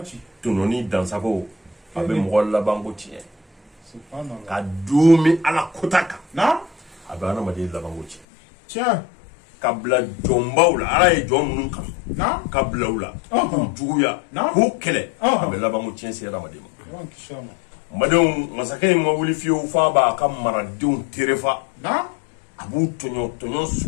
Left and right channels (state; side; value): drops out; right; at 8.2 s